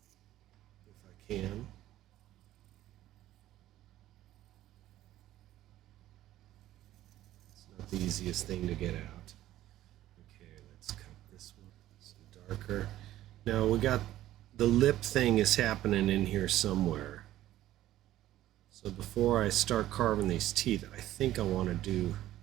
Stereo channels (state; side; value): quieter; left; 14.0 dB